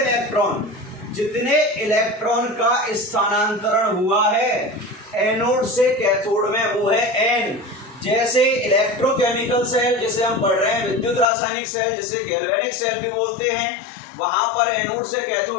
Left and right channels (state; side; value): drops out; right; at 11.2 s